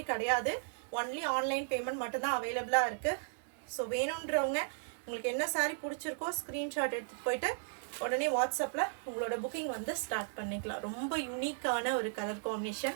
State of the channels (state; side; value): silent; left; digital silence